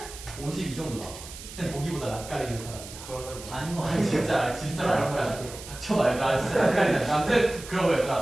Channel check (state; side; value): noise; right; hiss, 14 dB below the sound